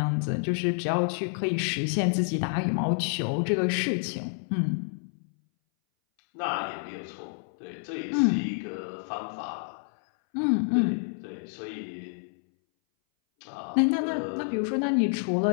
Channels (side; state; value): right; silent; 59 dB below the other